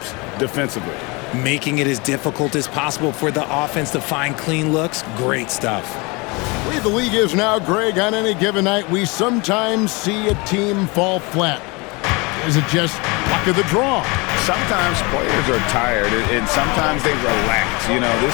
defensively. Making it as difficult as possible for the offense to find clean looks. Great stuff. The way the league is now, Greg, on any given night, we sometimes see a team fall flat. Is it just luck of the draw? Sometimes players are tired, and sometimes they relax. You know, this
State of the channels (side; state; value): right; quieter; 27.1 dB